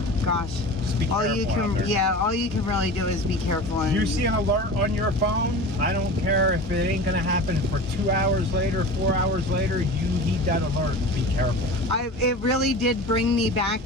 gosh, Just be all you careful out can, there. yeah, all you can really do is be careful. And You see an alert on your phone, I don't care if it ain't gonna happen for 2 hours later, 4 hours later, you need that alert. Be careful. it really did bring me back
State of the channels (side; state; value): both; normal; correlation 0.34